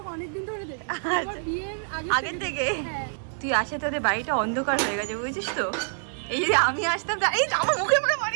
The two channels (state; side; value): silent; left; 58 dB below the other